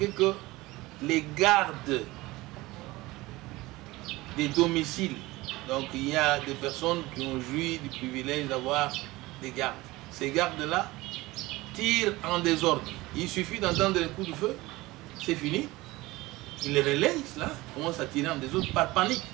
que les gardes des domiciles, donc il y a des personnes qui ont joui du privilège d'avoir des gardes. Ces gardes-là tirent en désordre. Il suffit d'entendre les coups de feu, c'est fini. Ils les relayent, là, commencent à tirer en désordre par panique.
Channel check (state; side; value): quieter; left; 20.0 dB